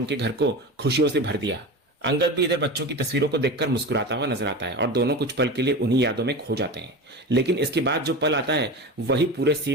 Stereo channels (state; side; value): normal; both; correlation 0.27